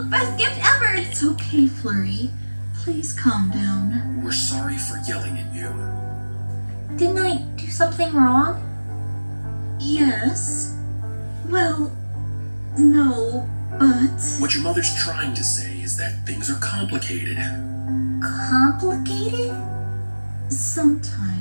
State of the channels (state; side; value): inverted; both; correlation -1.00